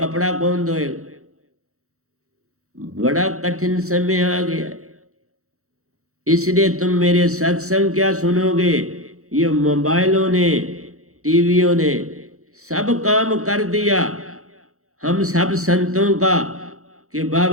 कौन धोएगा। बड़ा कठिन समय आ गया है। इसलिए तुम मेरे सत्संग क्या सुनोगे, ये मोबाइलों ने, टीवियों ने सब काम कर दिया हम सब संतों का कि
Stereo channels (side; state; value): left; late; 0.64 ms